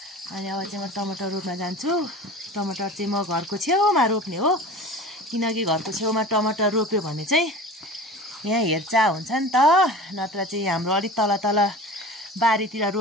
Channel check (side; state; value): both; normal; correlation 0.37